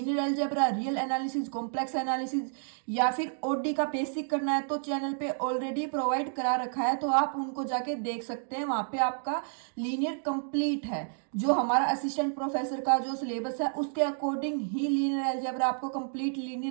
algebra, real analysis, complex analysis या फिर ओडी का बेसिक करना है तो चैनल पे ऑलरेडी प्रोवाइड करा रखा है, तो आप उनको जाके देख सकते हैं। वहां पे आपका लीनियर कंप्लीट है। जो हमारा असिस्टेंट प्रोफेसर का जो सिलेबस है उसके अकॉर्डिंग ही लीनियर अलजेब्रा आपको कंप्लीट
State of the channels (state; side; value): silent; left; digital silence